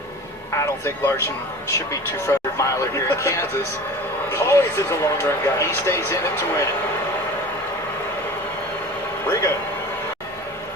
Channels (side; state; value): both; normal; correlation 0.38